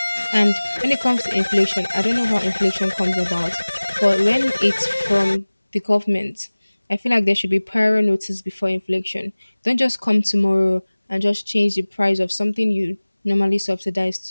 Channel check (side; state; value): both; inverted; correlation -1.00